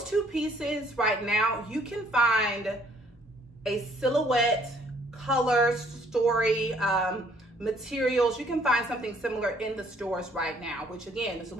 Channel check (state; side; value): normal; both; correlation 0.63